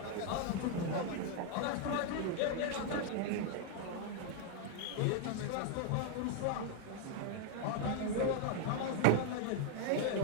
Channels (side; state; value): both; different; correlation 0.00